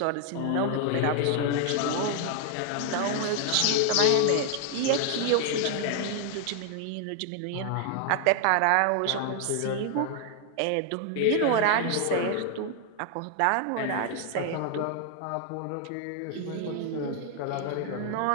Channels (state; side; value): different; both; correlation 0.00